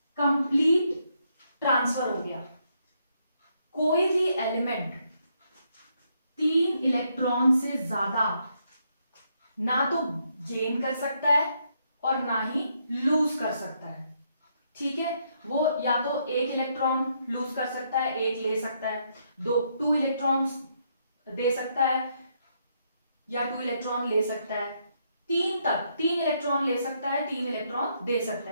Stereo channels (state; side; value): inverted; both; correlation -0.75